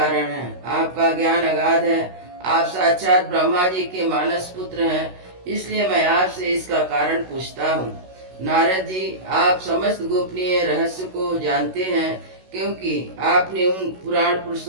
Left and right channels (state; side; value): late; left; 16 ms